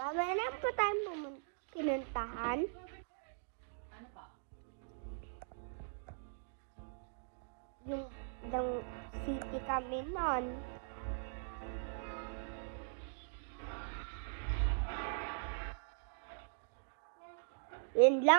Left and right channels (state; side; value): silent; left; digital silence